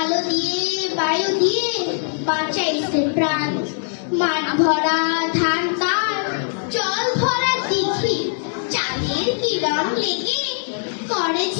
দিয়ে বায়ু দিয়ে বাঁচাইছে প্রাণ। মাঠ ভরা ধান তার, জল ভরা দিঘি, চাঁদের কিরণ লেগে করে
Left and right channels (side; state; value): right; silent; digital silence